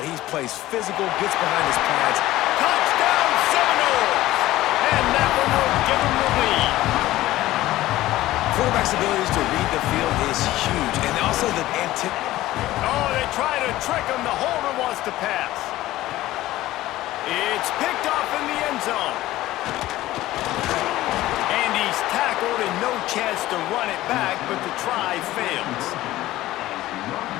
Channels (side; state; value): right; quieter; 16.0 dB